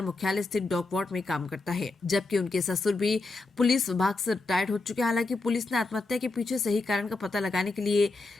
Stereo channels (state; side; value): quieter; right; 3.5 dB